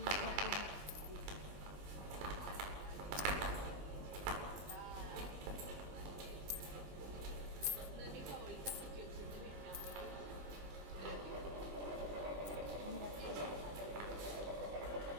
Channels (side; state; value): left; late; 20 ms